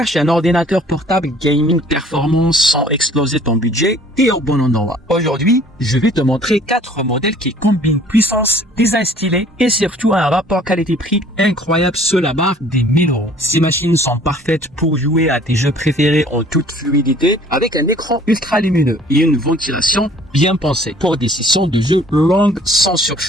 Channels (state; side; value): normal; both; correlation 0.54